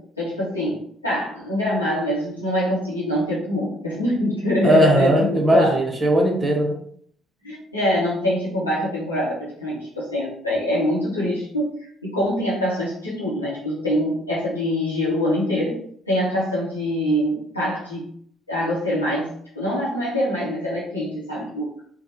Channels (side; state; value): both; normal; correlation 0.61